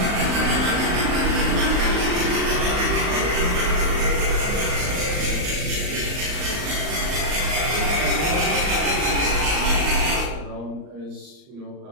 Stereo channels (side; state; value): left; late; 39 ms